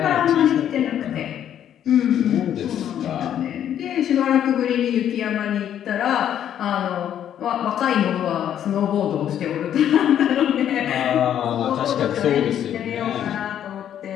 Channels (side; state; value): right; quieter; 10.2 dB